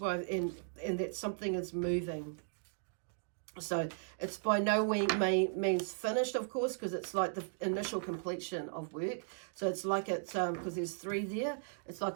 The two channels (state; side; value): silent; left; digital silence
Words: and that something is moving. So it's by no means finished, of course, because it's like the initial completion of work. So it's like it's because there's 3 there. It's